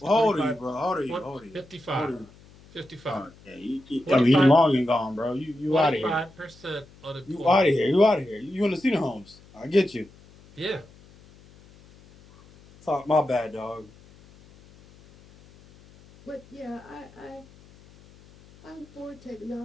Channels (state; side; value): noise; left; hum, 25 dB below the sound